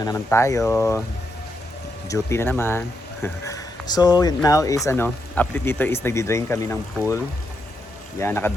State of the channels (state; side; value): normal; both; correlation 0.82